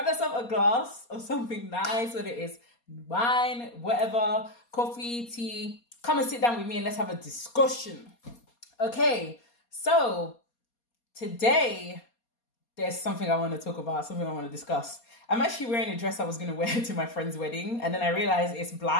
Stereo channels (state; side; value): late; right; 4.2 ms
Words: yourself a glass of something nice, whether it is wine, whatever, coffee, tea. Come and sit down with me and let's have a discussion. Okay, so today there's something I want to talk about, something I want to discuss. I'm actually wearing a dress I was going to wear to my friend's wedding, and then I realized it's